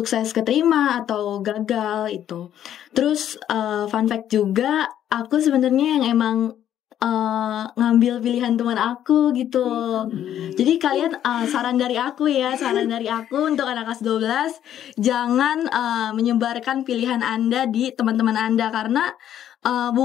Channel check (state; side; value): quieter; right; 10.7 dB